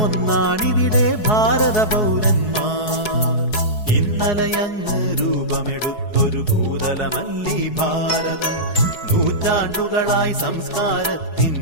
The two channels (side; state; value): right; late; 4.7 ms